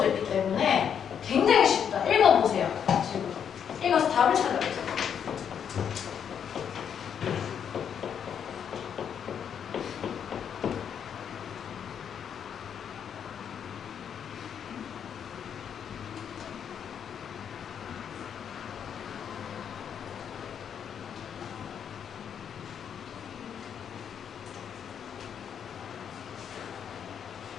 있기 때문에 굉장히 쉽다. 읽어보세요. 지금 읽어서 답을 찾아보세요.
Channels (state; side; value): quieter; right; 8.1 dB